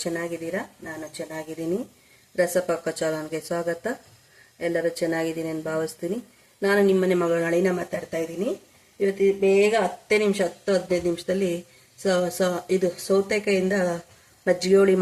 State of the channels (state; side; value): identical; both; correlation 1.00